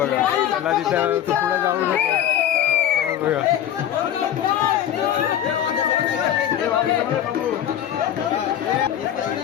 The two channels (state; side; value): quieter; right; 10.6 dB